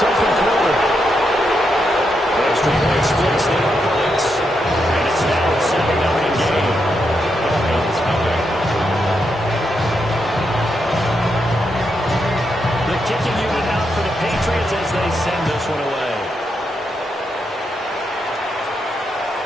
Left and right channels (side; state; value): both; normal; correlation 0.82